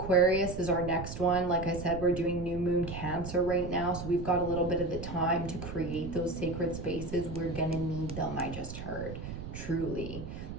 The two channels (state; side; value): noise; right; rumble, 9 dB below the sound